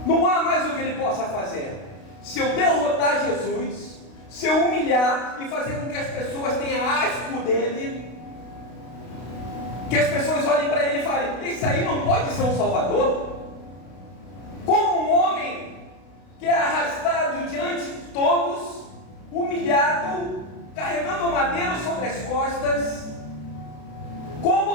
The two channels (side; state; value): right; late; 32 ms